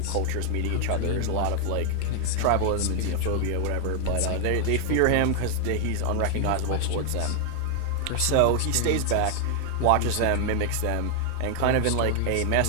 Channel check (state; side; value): different; both; correlation 0.00